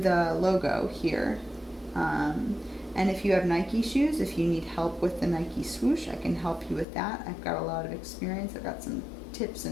logo here. And if you have Nike shoes, if you need help with the Nike swoosh, I can help you with that. I've got a lot of experience. I've got some tips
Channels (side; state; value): right; drops out; at 6.9 s